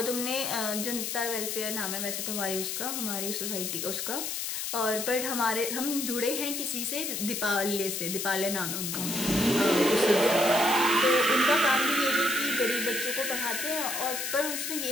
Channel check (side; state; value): left; noise; hiss, 3 dB below the sound